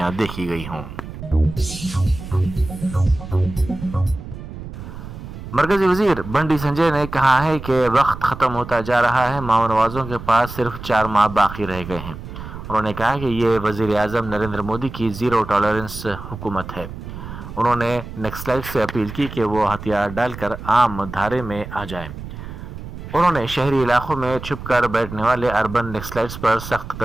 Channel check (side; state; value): right; noise; rumble, 11 dB below the sound